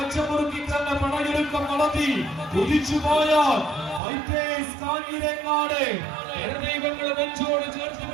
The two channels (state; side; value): drops out; left; at 4.0 s